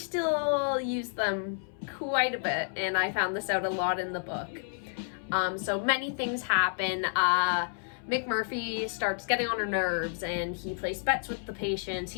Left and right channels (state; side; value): silent; right; 58 dB below the other